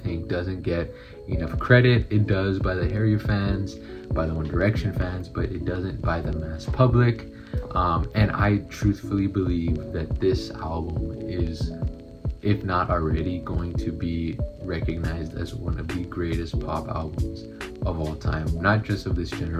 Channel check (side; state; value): both; identical; correlation 1.00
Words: doesn't get enough credit. It does by the Harry fans, by the One Direction fans, but it doesn't by the mass public. And I truthfully believe that this album is, if not already, going to be recognized as one of the greatest pop albums of all time. Not just of this